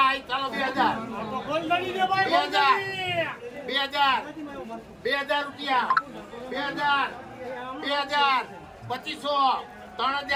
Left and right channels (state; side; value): identical; both; correlation 1.00